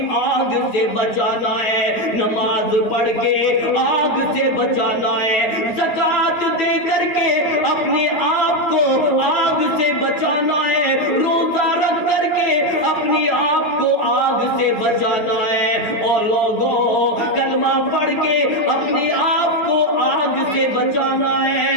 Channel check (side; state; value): right; late; 9.2 ms